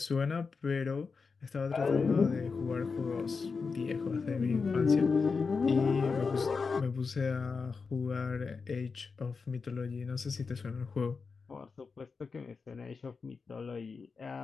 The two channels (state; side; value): quieter; right; 4.9 dB